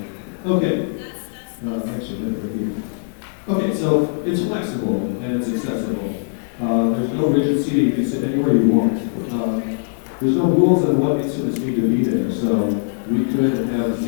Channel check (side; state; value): right; silent; 62 dB below the other